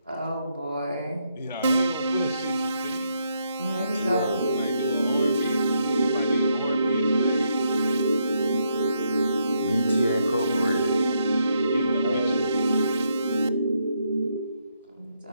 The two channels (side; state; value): both; inverted; correlation -0.78